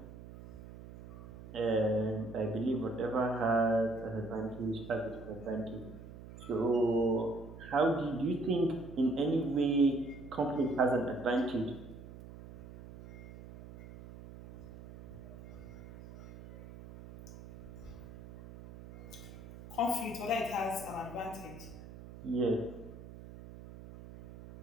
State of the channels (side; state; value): right; noise; hum, 15 dB below the sound